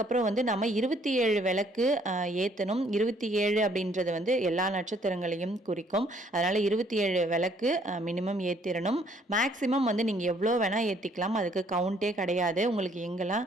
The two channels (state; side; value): normal; both; correlation 0.64